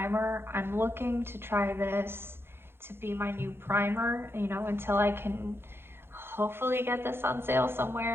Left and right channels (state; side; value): late; left; 0.11 ms